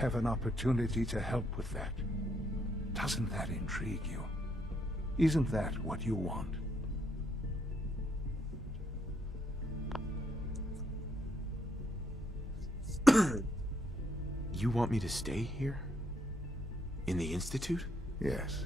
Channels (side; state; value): both; normal; correlation 0.73